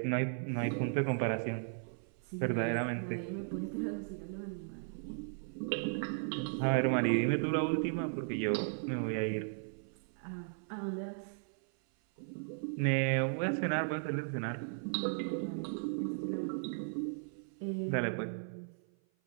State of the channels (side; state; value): left; silent; 54 dB below the other